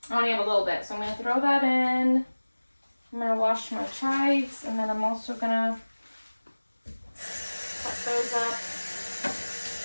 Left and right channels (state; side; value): inverted; both; correlation -1.00